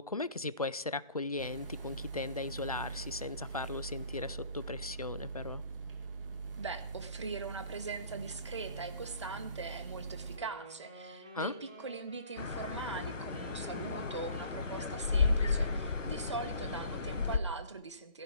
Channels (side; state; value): both; inverted; correlation -0.51